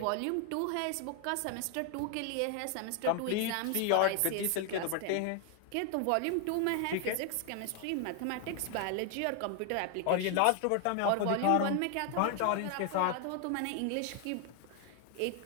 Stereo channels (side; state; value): both; different; correlation 0.00